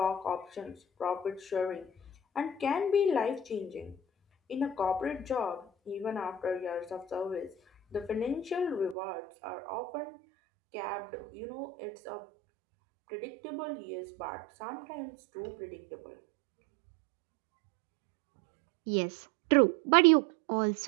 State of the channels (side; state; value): left; drops out; at 9.0 s